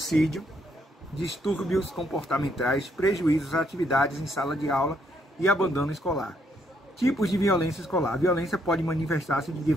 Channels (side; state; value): both; normal; correlation 0.72